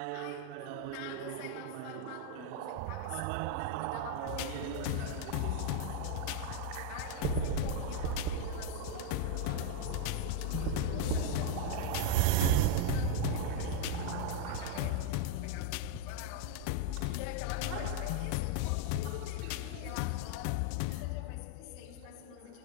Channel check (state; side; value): different; both; correlation 0.00